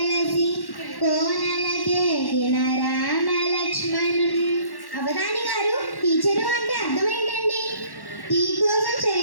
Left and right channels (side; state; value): right; late; 1.1 ms